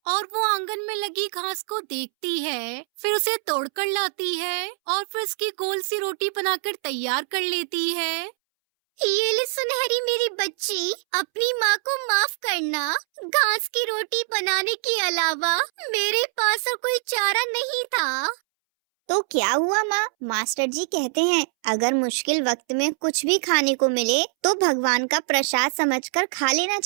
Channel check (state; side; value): silent; left; 63 dB below the other